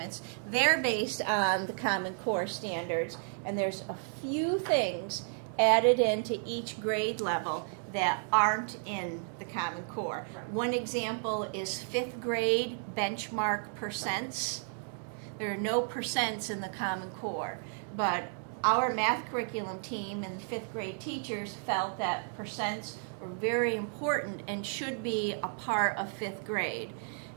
they're based on the Common Core standards, and there's a few things added into each grade level that aren't in the Common Core. Right. One example is 5th grade benchmark percents. There are no percents in the Common Core, but our math curriculum team and 5th grade teachers felt that percents were very important and should be a part of 5th grade.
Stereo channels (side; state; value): left; silent; 56 dB below the other